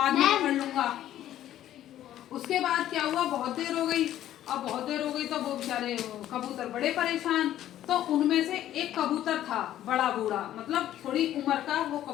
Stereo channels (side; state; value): right; quieter; 12.4 dB